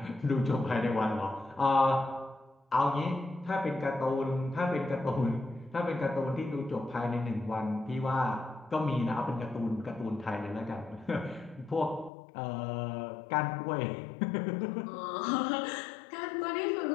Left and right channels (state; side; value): drops out; right; at 12.1 s